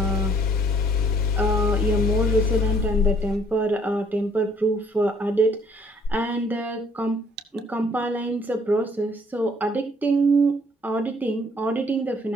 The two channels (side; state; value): both; normal; correlation 0.62